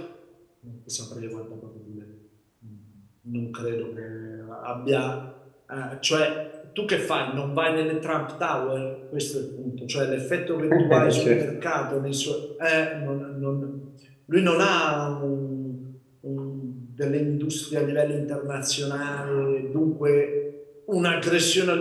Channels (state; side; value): identical; both; correlation 1.00